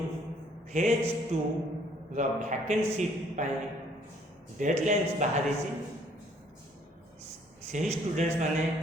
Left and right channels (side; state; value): both; normal; correlation 0.62